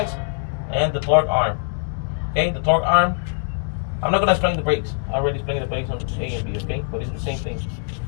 and the torque arm. Okay, the torque arm. I'm not gonna explain the brakes. I already explained the brakes on A and B. Okay, but it's the same thing.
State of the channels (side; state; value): right; silent; digital silence